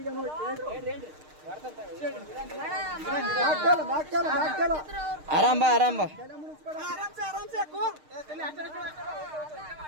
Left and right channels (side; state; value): left; late; 6.5 ms